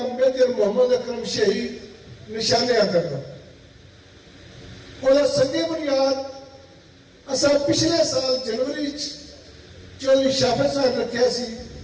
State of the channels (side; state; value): both; identical; correlation 1.00